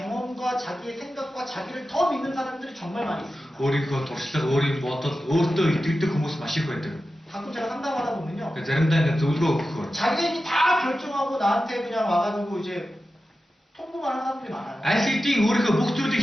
자기의 생각과 자기를 더 믿는 사람들이 정말 많이 있습니다. өөрийнхөө туршлага, өөрийн бодол, өөртөө итгэдэг хүмүүс маш их байдаг. 가끔 제가 상담하다 보면요. Тэгэхээр заримдаа ингээд зөвлөгөө өгөхөөр 자기가 이미 다 결정하고 나한테 그냥 와가지고 이제 통보만 하는 사람들이 많아요. аль хэдийн өөрийнхөө бүх зүйлийг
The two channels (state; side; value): normal; both; correlation 0.93